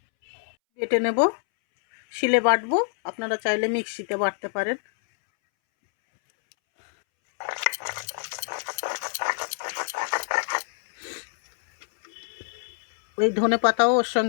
নেব, শিলে বাটবো। আপনারা চাইলে মিক্সিতে বাটতে পারেন। ওই ধনে পাতাও ওর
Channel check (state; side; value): silent; right; 61 dB below the other